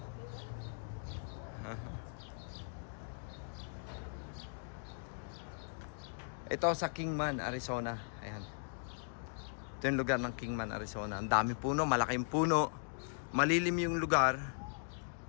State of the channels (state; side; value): silent; right; digital silence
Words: Ito sa Kingman, Arizona. Ayan. Ito yung lugar ng Kingman, Arizona. Ang dami puno, malaking puno. Malilim yung lugar.